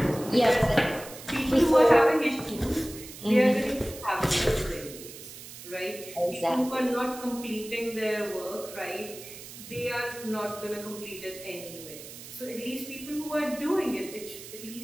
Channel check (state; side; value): noise; right; hiss, 14 dB below the sound